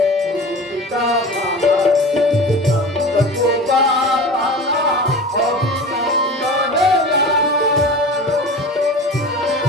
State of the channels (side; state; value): both; normal; correlation 0.34